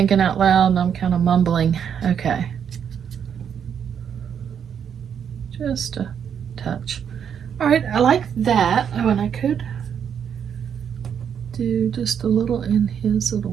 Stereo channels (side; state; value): left; quieter; 8.0 dB